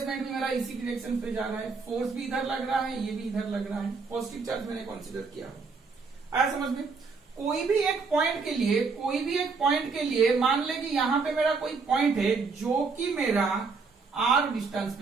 रहा है, फोर्स भी इधर लग रहा है, ये भी इधर लग रहा है, पॉजिटिव चार्ज मैंने कंसीडर किया है। आया समझ में? कोई भी एक पॉइंट के लिए मान ले कि यहां पे मेरा कोई पॉइंट है जो कि मेरा R डिस्टेंस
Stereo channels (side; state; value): left; quieter; 4.7 dB